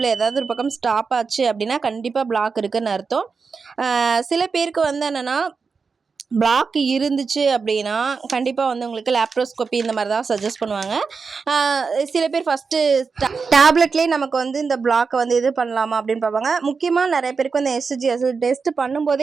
ஏதாவது ஒரு பக்கம் ஸ்டாப் ஆச்சு அப்படின்னா கண்டிப்பாக பிளாக் இருக்குதுன்னு அர்த்தம். சில பேருக்கு வந்து என்னென்னா பிளாக் இருந்துச்சு அப்படின்னா கண்டிப்பாக வந்து உங்களுக்கு லேப்ரோஸ்கோப்பி இந்த மாதிரி தான் சஜஸ்ட் பண்ணுவாங்க. சில பேர் ஃபஸ்ட்டு டேப்லெட்லேயே நமக்கு வந்து இந்த பிளாக்கை வந்து இது பண்ணலாமா அப்படின்னு பார்ப்பாங்க. முக்கியமாக நிறைய பேருக்கு வந்து எஸ்ஜி டெஸ்ட்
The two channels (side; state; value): left; quieter; 5.0 dB